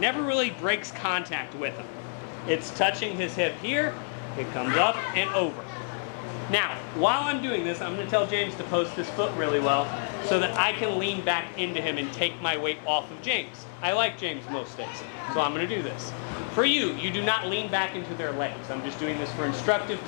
really breaks contact with him. It's touching his hip here, it comes up and over. Now, while I'm doing this, I'm going to tell James to post his foot really well so that I can lean back into him and take my weight off of James. I like James most days, so I'm going to do this. For you, you do not lean back into their legs. I'm just doing this for instructive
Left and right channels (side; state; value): right; silent; digital silence